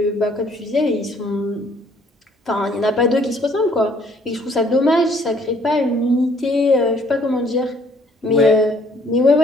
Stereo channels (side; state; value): both; normal; correlation 0.62